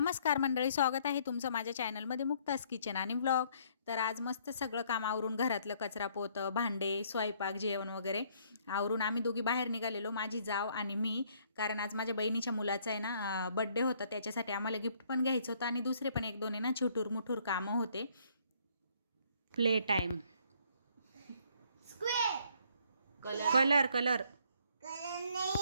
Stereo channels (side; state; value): both; inverted; correlation -0.64